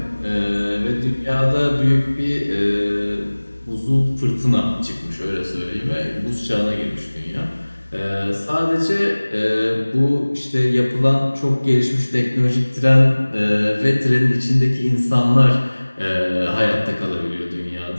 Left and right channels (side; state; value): both; inverted; correlation -1.00